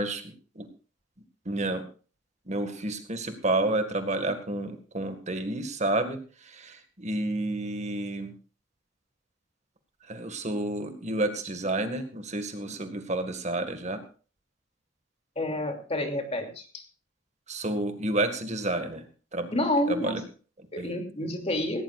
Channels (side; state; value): both; normal; correlation 0.30